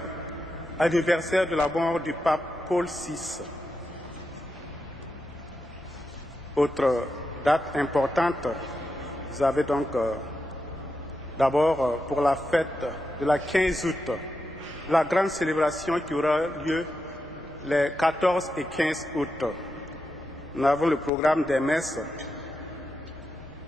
anniversaire de la mort du pape Paul VI. Autre date importante, vous avez donc d'abord pour la fête de la 15 août, la grande célébration qui aura lieu les 14 et 15 août. Nous avons le programme des messes.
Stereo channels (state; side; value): normal; both; correlation 0.87